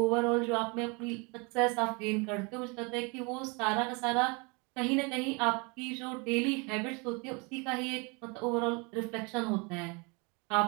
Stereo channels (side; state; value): left; quieter; 30.3 dB